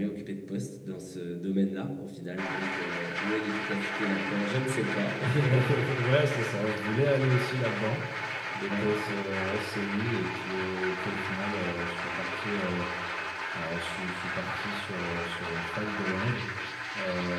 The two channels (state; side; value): identical; both; correlation 1.00